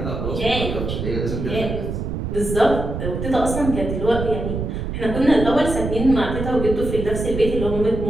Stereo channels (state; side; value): noise; right; rumble, 4 dB below the sound